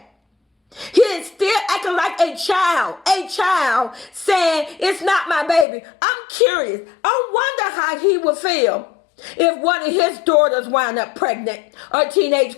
He is still acting like a child saying, it's not my baby. I'm curious. I wonder how he would feel if one of his daughters wound up pregnant or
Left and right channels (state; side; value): drops out; right; at 5.7 s